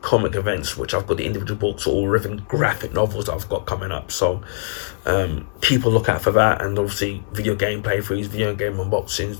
comic events, which I've got the individual books or even graphic novels that I've got coming up. So keep a lookout for that, and obviously video game playthroughs, video game unboxings,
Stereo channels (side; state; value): right; silent; digital silence